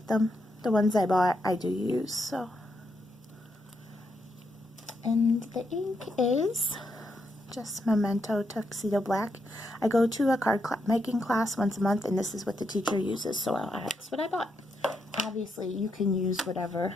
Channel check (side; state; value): both; normal; correlation 0.81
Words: them. The ones I bought, I do use, so. And the ink is just Memento Tuxedo Black. I go to a card making class once a month, and this is what the teacher uses, so that's what I bought. Obviously, you can use whatever